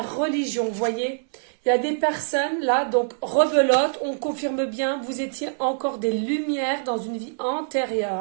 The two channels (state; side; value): silent; left; 62 dB below the other